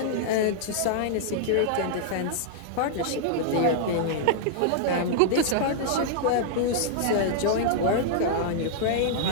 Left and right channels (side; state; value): both; different; correlation -0.01